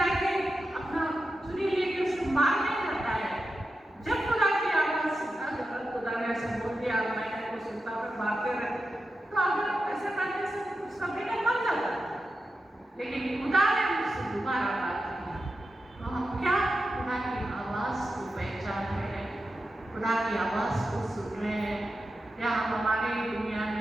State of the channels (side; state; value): both; normal; correlation 0.90